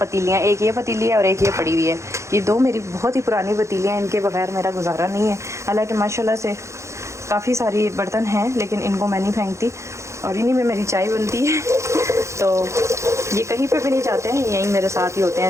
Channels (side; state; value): left; late; 0.14 ms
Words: एक ये पतीली है और एक ये पड़ी हुई है। ये 2 मेरी बहुत ही पुरानी पतीलियाँ, इनके बगैर मेरा गुजारा नहीं है। हालांकि माशाल्लाह से काफ़ी सारी बर्तन हैं, लेकिन इनको मैं नहीं फेंकती और इन्हीं में मेरी चाय बनती है। तो ये कहीं पे भी नहीं जाते हैं, यहीं मेरे साथ ही होते